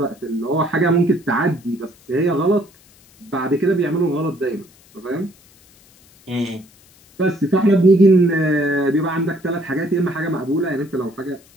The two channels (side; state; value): left; noise; hiss, 28 dB below the sound